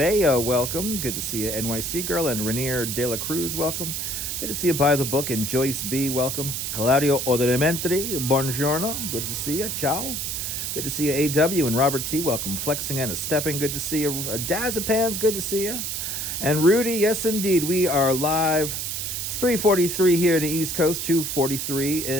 welcome. Good to see you, NYC girl, and Rainier De La Cruz, welcome. Good to see you, By the Book, and Joyce B, welcome. Claudio Odementri, buongiorno. Good to see you. Ciao. Good to see you, AW, and Robert T, welcome. Flexing and Stepping, good to see you. Dazapans, good to see you. And Rudy, yes indeed, we are live. It's 3:43 here in the East Coast, 2:43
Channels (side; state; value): right; noise; hiss, 3 dB below the sound